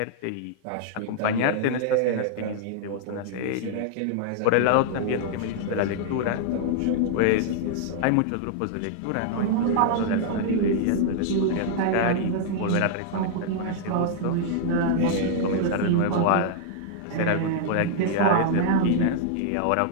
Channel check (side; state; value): both; different; correlation -0.01